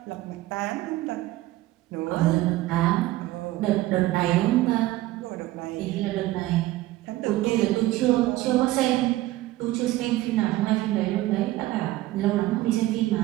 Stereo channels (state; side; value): quieter; left; 16.7 dB